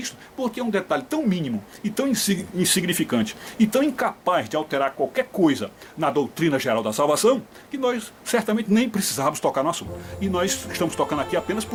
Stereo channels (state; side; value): identical; both; correlation 1.00